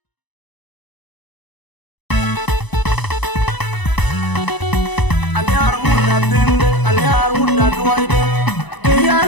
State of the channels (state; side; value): late; right; 1.0 ms